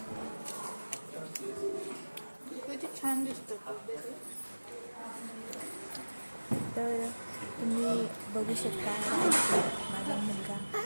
किती छान दिसतं. तर तुम्ही बघू शकता माझा मुलगा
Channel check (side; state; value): both; inverted; correlation -1.00